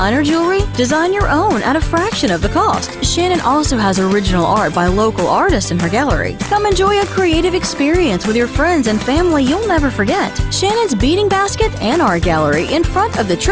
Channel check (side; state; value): both; identical; correlation 1.00